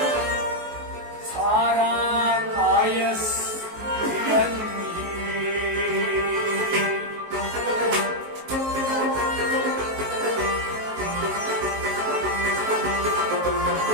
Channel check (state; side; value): late; left; 19 ms